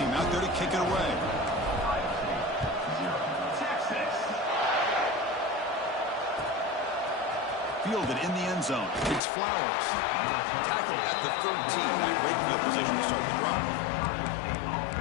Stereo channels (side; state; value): right; drops out; at 9.2 s